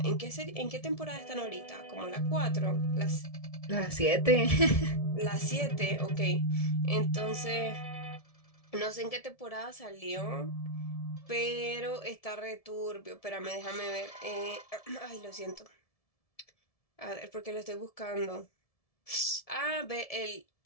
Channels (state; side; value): late; right; 1.7 ms